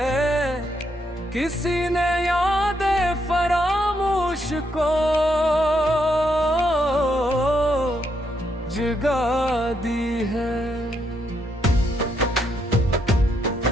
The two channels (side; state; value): both; normal; correlation 0.77